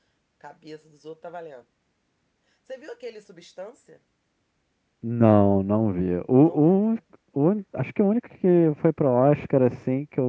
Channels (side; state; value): both; identical; correlation 1.00